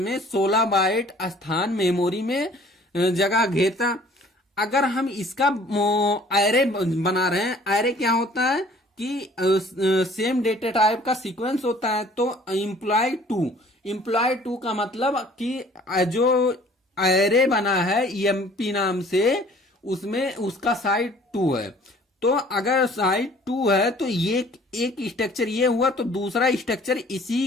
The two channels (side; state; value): both; normal; correlation 0.54